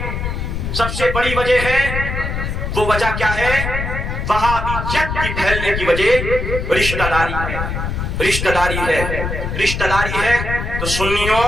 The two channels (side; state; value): left; noise; rumble, 3 dB below the sound